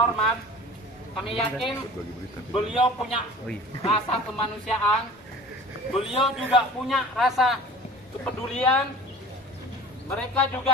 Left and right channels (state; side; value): normal; both; correlation 0.44